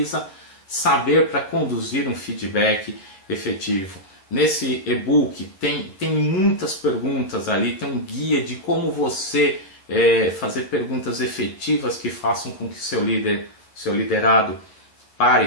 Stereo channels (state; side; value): late; right; 11 ms